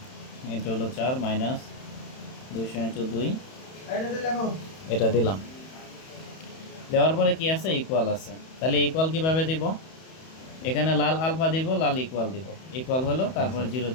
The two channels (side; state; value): right; late; 31 ms